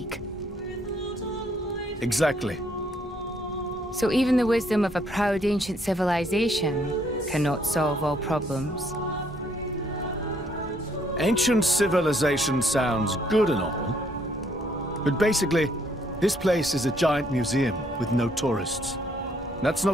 Exactly. So even the wisdom of a proud ancient civilization cannot solve all problems. Ancient civilization sounds good and all, but basically, this place is a giant museum with no tourists. That's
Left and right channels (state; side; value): normal; both; correlation 0.68